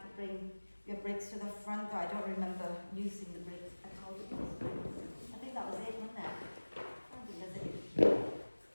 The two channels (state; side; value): inverted; both; correlation -1.00